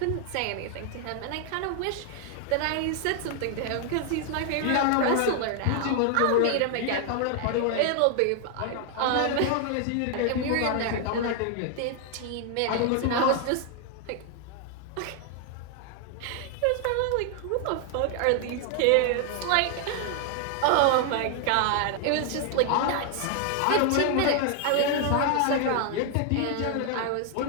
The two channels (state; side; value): different; both; correlation 0.00